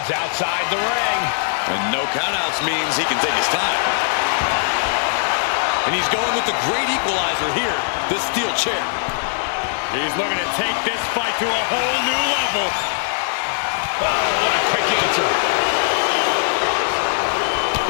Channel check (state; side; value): silent; right; 56 dB below the other